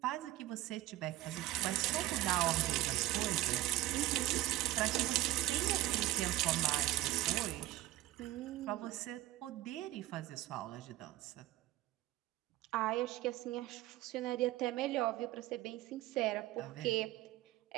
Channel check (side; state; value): left; quieter; 15.8 dB